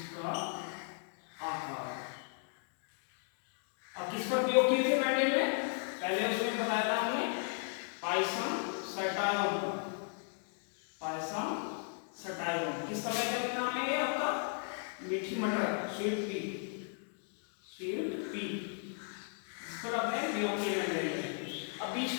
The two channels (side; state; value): right; silent; 54 dB below the other